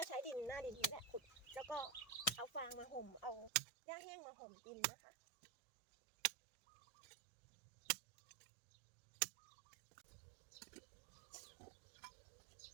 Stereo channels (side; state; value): left; drops out; at 3.6 s